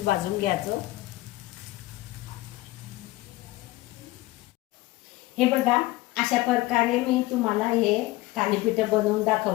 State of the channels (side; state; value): right; quieter; 19.1 dB